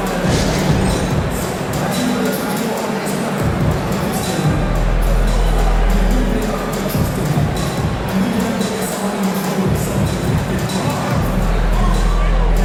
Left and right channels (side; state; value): both; identical; correlation 1.00